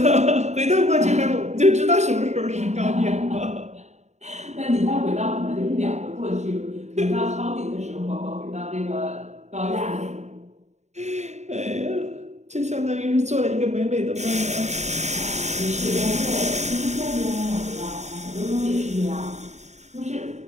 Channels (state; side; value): late; left; 0.33 ms